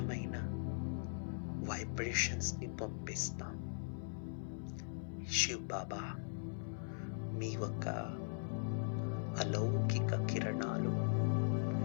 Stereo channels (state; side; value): silent; right; 51 dB below the other